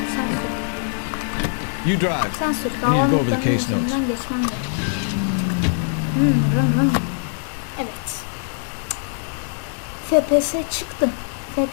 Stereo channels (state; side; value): silent; right; digital silence